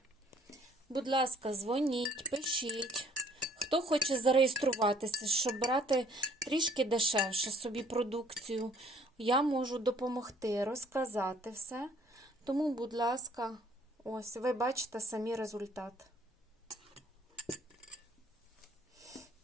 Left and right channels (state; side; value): normal; both; correlation 0.59